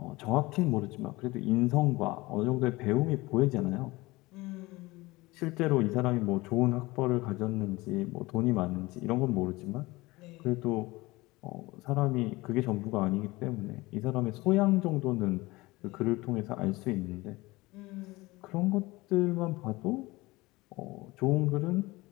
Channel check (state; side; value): quieter; right; 21.2 dB